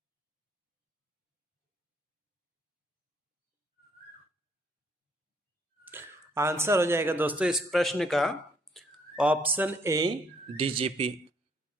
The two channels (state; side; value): normal; both; correlation 0.67